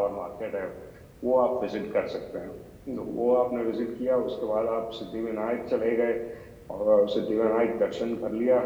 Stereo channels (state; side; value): identical; both; correlation 1.00